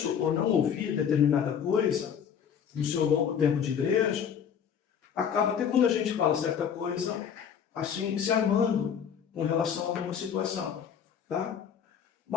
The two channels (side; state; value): right; quieter; 7.8 dB